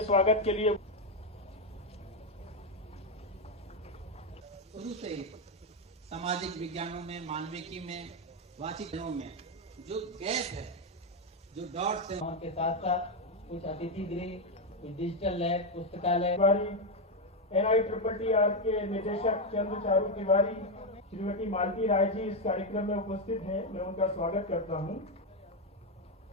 स्वागत के लिए शुरू से सामाजिक विज्ञानों में, मानविकी में, वाचिकों में जो गैप है, जो डॉट्स हैं, उनके साथ साथ कुछ अतिथि गृह, कुछ डिजिटल लैब, पुस्तकालय। NITTR के निदेशक चंद्र चारू तिवारी, श्रीमती मालती राय जी इस कार्यक्रम में उपस्थित हैं। मैं उनका स्वागत करता हूं।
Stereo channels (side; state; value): both; normal; correlation 0.05